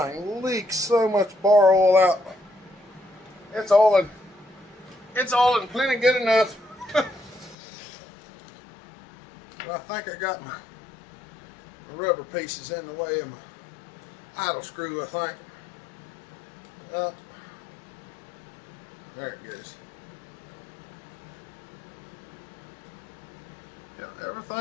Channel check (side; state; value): right; drops out; at 7.6 s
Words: leaks so much bar oil out. It's oiling plenty good enough. But I think I got my rubber pieces in the way of my idle screw, I think. Well, there it goes. Yeah,